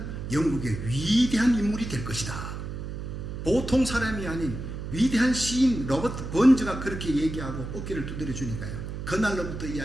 영국의 위대한 인물이 될 것이다. 보통 사람이 아닌 위대한 시인 로버트 번즈가 그렇게 얘기하고 어깨를 두드려 주니까요, 그날로부터 이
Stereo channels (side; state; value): right; noise; hum, 7 dB below the sound